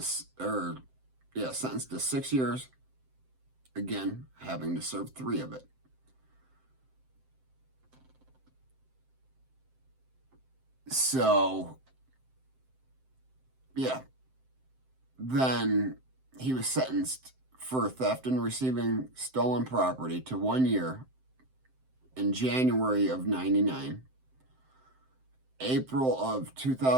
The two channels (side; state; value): left; late; 7.7 ms